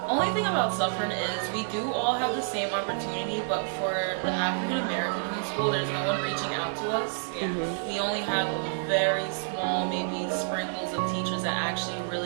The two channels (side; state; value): left; silent; digital silence